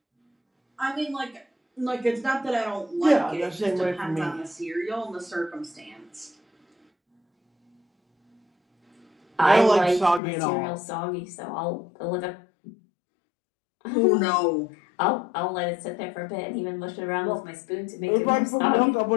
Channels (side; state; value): right; drops out; at 10.2 s